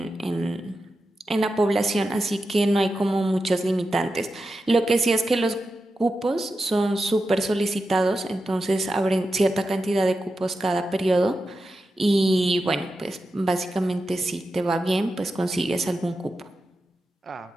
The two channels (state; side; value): normal; both; correlation 0.90